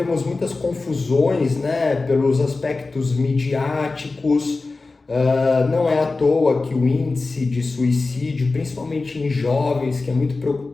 muitas confusões, né, pelos aspectos midiáticos, não é à toa que o índice de suicídio, principalmente em jovens, que é muito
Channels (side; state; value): right; quieter; 3.7 dB